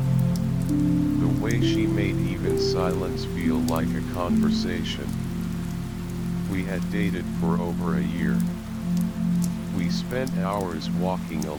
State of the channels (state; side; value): identical; both; correlation 1.00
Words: The way she made even silence feel like a conversation. We had dated for over a year. We spent hours walking